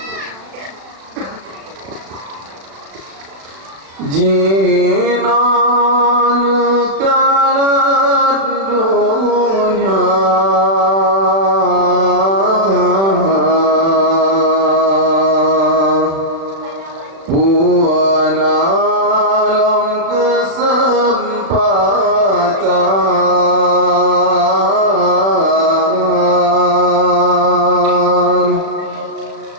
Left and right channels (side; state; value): left; late; 36 ms